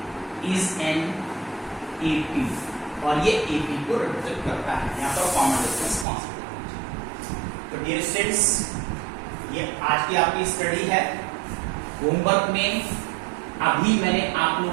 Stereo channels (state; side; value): drops out; left; at 6.1 s